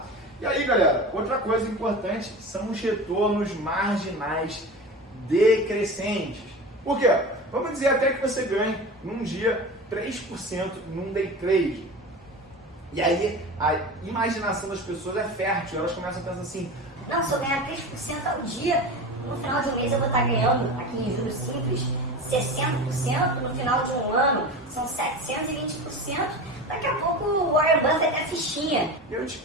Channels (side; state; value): both; normal; correlation 0.30